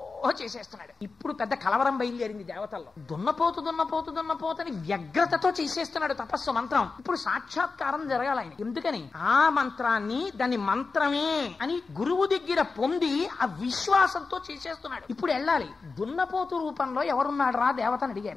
చేసేస్తున్నాడు. ఇప్పుడు పెద్ద కలవరం బయలుదేరింది దేవతల్లో. దున్నపోతని వ్యగ్రతతో చేసేస్తున్నాడు తపస్సు, మంత్రం. ఇప్పుడు సాక్షాత్కారం జరగాలి ఆయన. ఎందుకని ఆ మంత్రాన్ని దాన్ని మంత్రమే అని గురువు దగ్గర పొంది ఆ విశ్వాసంతో చేసేస్తున్నాడు. ఇప్పుడు వెళ్ళాలి. దున్నపోతు రూపంలో ఎవరున్నాడు రా దేవతని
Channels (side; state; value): right; quieter; 4.3 dB